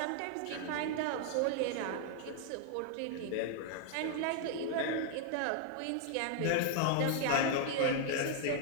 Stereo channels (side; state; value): both; different; correlation 0.00